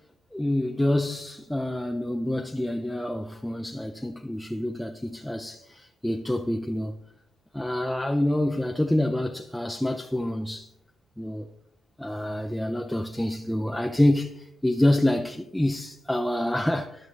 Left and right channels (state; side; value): normal; both; correlation 0.98